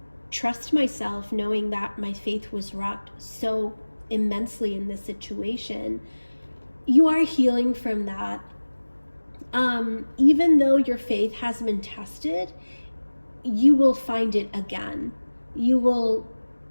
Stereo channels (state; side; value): inverted; both; correlation -1.00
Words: trust myself, knowing that my faith was rocked so immensely in this situation? You are healing from that. Even though your faith has been tested, you will find it again. You will